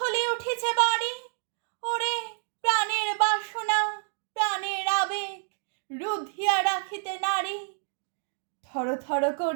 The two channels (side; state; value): left; silent; digital silence